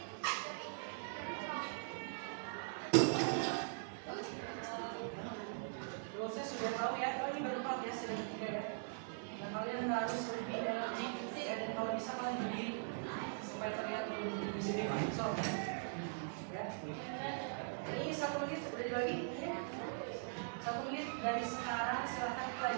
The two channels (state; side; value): silent; left; 50 dB below the other